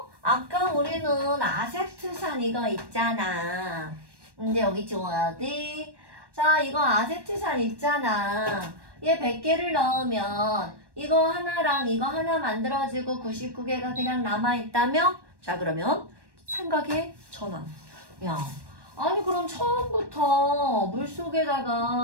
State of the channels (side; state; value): left; late; 1.1 ms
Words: 아까 우리는 아세트산 이거 있잖아. 근데 여기 줘야 돼. 자, 이거 아세트산 있잖아. 얘 100개를 넣으면 이거 하나랑 이거 하나 만들어지고 99개가 그냥 남아있다며? 자, 그러면 생각의 전환. 야, 아니 그럼 처음부터